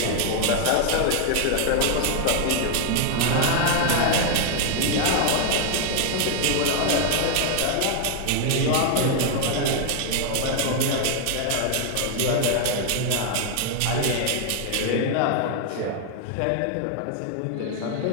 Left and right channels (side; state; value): both; different; correlation 0.00